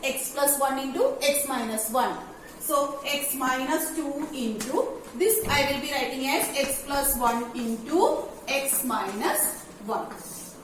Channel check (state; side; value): identical; both; correlation 1.00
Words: x plus 1 into x minus 1. So x minus 2 into this I will be writing as x plus 1 into x minus 1.